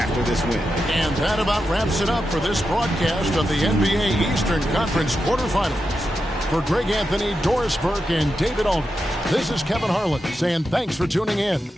this win. And that about wraps it up for this broadcast of the NBA Eastern Conference quarterfinals. For Greg Anthony, Doris Burke, and David Aldridge, this is Kevin Harlan saying thanks for tuning in.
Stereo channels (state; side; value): normal; both; correlation 0.88